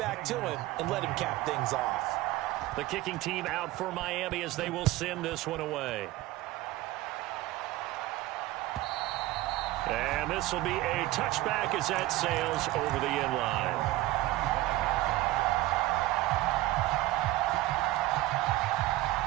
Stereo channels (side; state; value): left; quieter; 17.1 dB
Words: to him, and let him cap things off. The kicking team out for Miami as they will send this one away. And this will be a touchback as that sails over the end line.